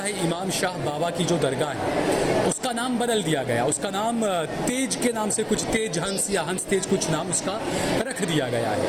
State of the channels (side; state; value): both; identical; correlation 1.00